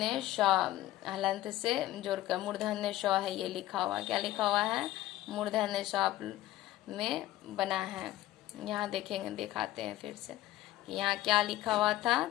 श हलंत से जोड़कर मूर्धन्य श है ये लिखा हुआ। क्या लिखा हुआ है? मूर्धन्य श में बना है। यहाँ देखेंगे, दिखाते हैं फिर से कि यहाँ क्या लिखा हुआ था।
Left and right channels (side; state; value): right; quieter; 15.1 dB